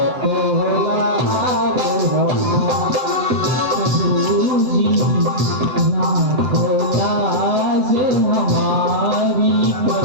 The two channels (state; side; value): late; left; 7.8 ms